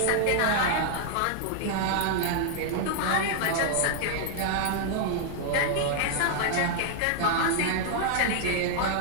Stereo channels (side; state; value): both; different; correlation 0.00